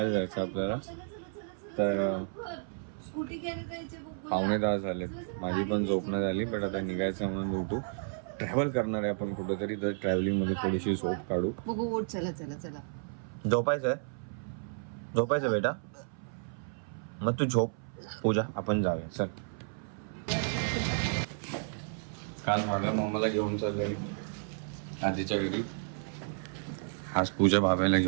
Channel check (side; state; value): left; silent; 56 dB below the other